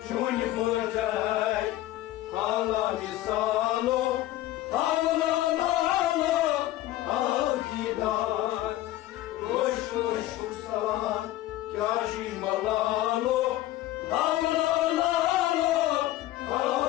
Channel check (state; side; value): quieter; right; 15.2 dB